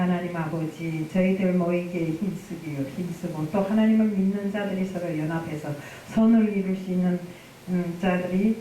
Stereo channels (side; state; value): both; identical; correlation 1.00